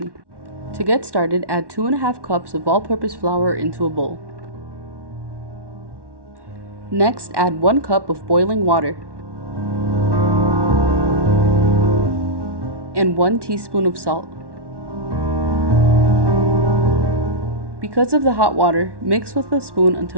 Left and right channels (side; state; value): left; late; 1.1 ms